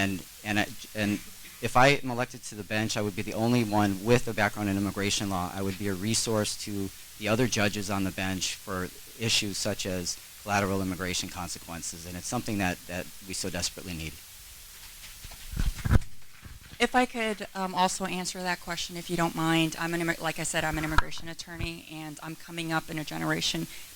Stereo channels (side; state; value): both; identical; correlation 1.00